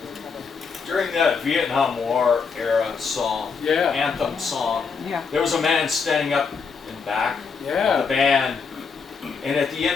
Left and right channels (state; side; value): quieter; right; 5.4 dB